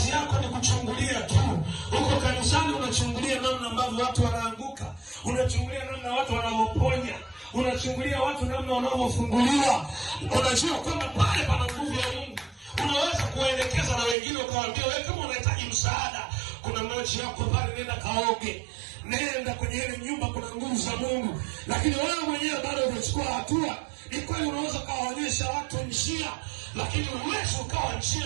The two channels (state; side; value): drops out; left; at 14.2 s